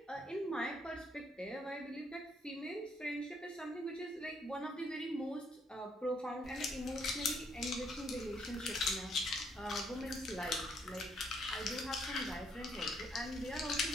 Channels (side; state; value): both; normal; correlation 0.70